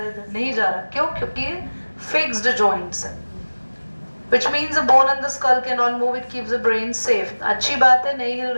इधर नहीं जा रहा, क्यों? क्योंकि फिक्स्ड जॉइंट्स है, which means the bone and the skull cannot move, it keeps the brain safe. अच्छी बात है नहीं हिल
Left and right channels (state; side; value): inverted; both; correlation -1.00